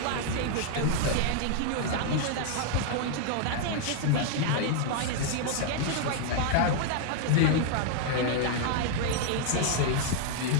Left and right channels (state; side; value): different; both; correlation 0.00